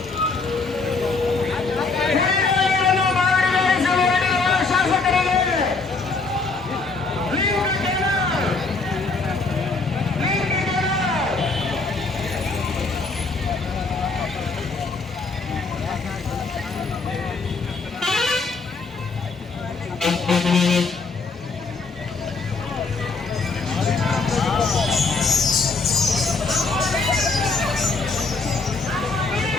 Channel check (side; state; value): right; quieter; 4.0 dB